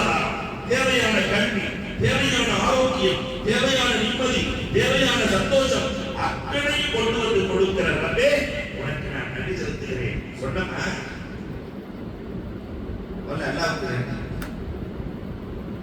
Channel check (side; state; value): both; identical; correlation 1.00